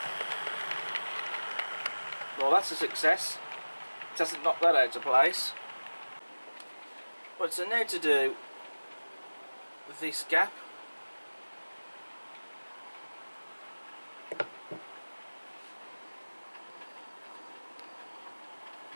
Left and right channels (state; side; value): inverted; both; correlation -1.00